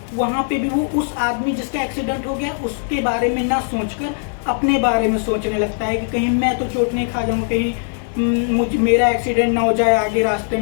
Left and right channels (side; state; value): right; silent; 66 dB below the other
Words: वहाँ पे भी वो उस आदमी जिसका एक्सीडेंट हो गया उसके बारे में ना सोचकर अपने बारे में सोचने लगता है कि कहीं मैं तो चोट नहीं खा जाऊँगा, कहीं मेरा एक्सीडेंट ना हो जाए आगे रास्ते